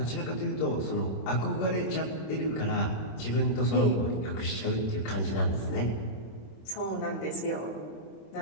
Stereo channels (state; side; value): late; right; 26 ms